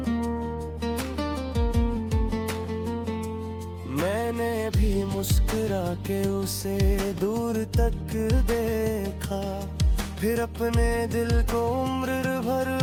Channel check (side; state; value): both; identical; correlation 1.00